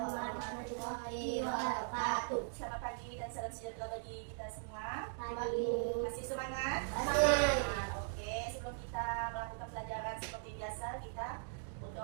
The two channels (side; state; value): left; silent; digital silence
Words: warahmatullahi wabarakatuh. Selamat pagi dan salam sejahtera bagi kita semua. Pagi. Masih semangat? Masih. Oke, sebelum kita melakukan pelajaran seperti biasa, kita